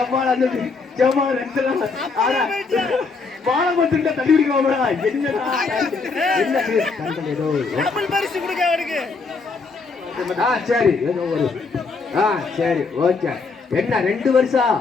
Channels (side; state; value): right; quieter; 4.4 dB